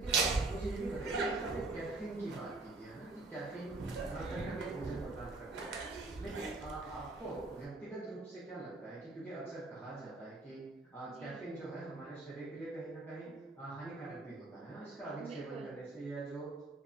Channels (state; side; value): quieter; left; 3.2 dB